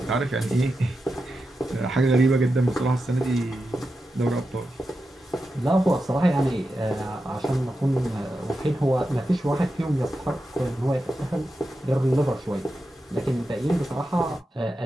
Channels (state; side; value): normal; both; correlation 0.89